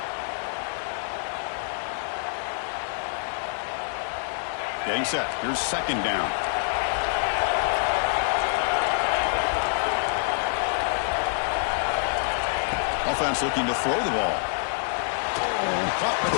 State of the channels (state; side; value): silent; right; 61 dB below the other